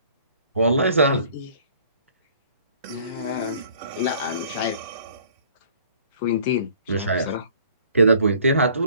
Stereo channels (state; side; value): inverted; both; correlation -0.55